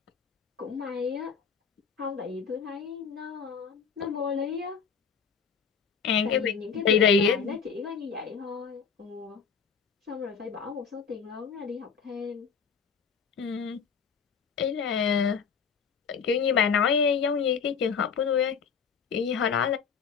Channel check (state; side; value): quieter; right; 6.3 dB